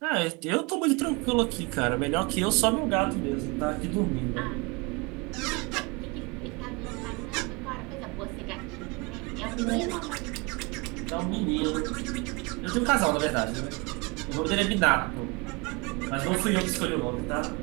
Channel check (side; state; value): left; quieter; 28.3 dB